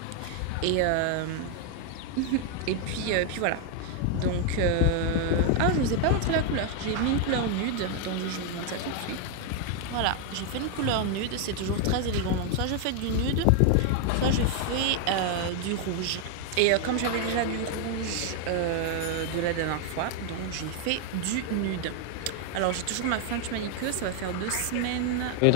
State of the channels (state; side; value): different; both; correlation 0.00